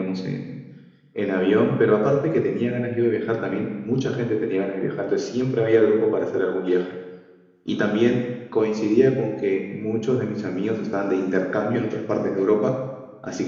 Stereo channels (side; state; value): both; identical; correlation 1.00